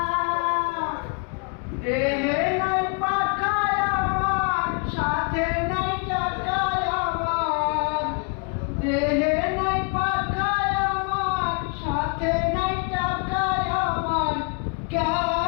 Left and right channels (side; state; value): right; quieter; 35.7 dB